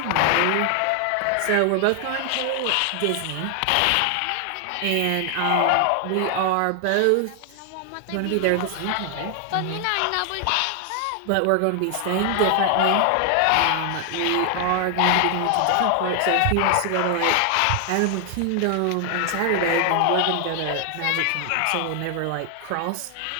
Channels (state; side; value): different; both; correlation 0.00